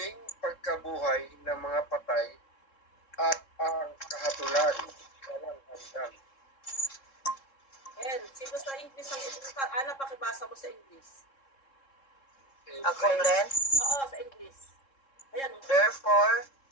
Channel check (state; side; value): late; right; 3.7 ms